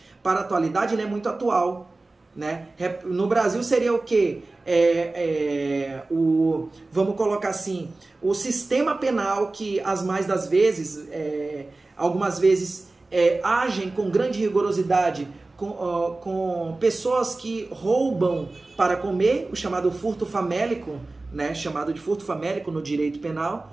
para a atualidade, ele é muito atual. Né? No Brasil seria o quê? Vamos colocar assim, o sistema penal que algumas vezes agem com grande rigorosidade com pessoas que roubam para comer, o chamado furto famélico, né? Chamado de furto famélico no direito penal,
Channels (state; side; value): quieter; left; 3.2 dB